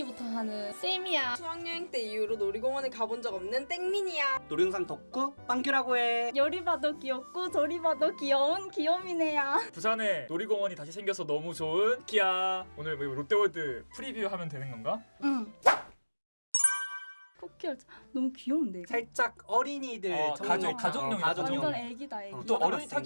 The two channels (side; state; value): both; inverted; correlation -1.00